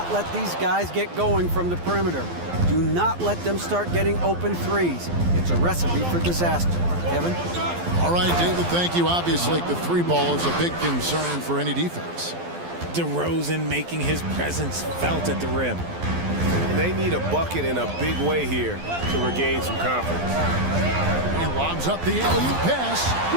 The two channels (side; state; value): left; late; 12 ms